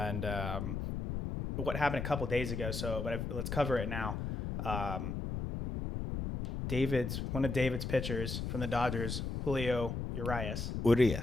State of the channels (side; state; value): left; noise; rumble, 3 dB below the sound